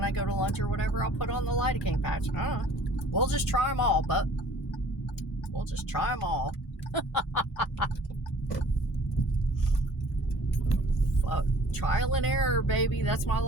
I go to lunch or whatever, I'll put on the lidocaine patch. I don't know. We'll just try them all, but we'll just try them all. Trial and error, baby. That's my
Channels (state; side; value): normal; both; correlation 0.51